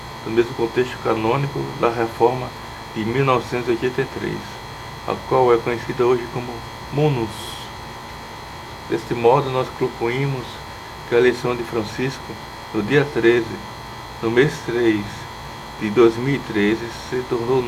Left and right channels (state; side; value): identical; both; correlation 1.00